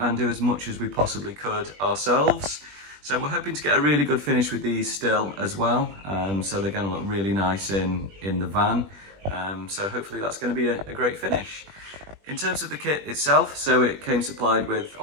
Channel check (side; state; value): left; late; 20 ms